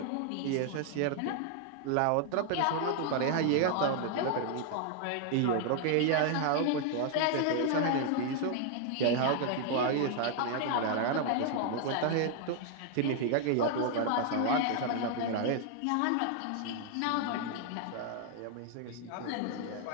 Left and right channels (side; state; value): both; different; correlation 0.00